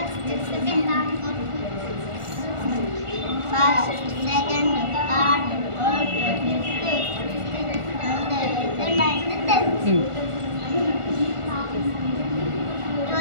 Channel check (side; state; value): left; late; 1.4 ms